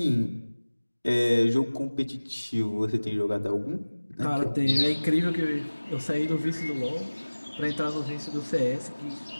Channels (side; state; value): both; inverted; correlation -1.00